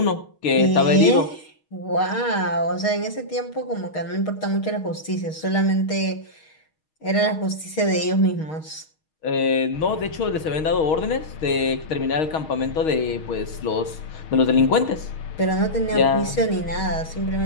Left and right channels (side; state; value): right; late; 6.4 ms